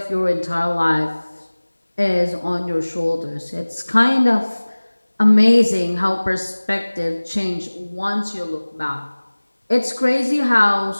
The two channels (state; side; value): inverted; both; correlation -1.00